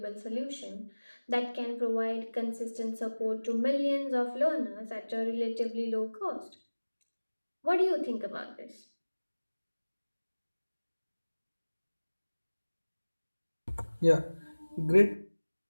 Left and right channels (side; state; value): both; inverted; correlation -1.00